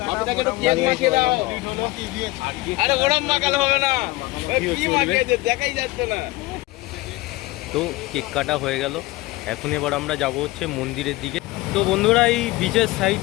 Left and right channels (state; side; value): quieter; right; 19.9 dB